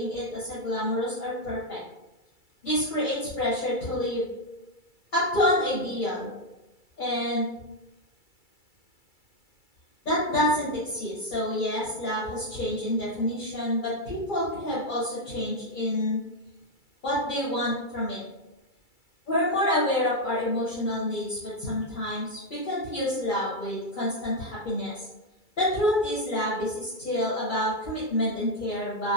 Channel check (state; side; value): late; right; 2.3 ms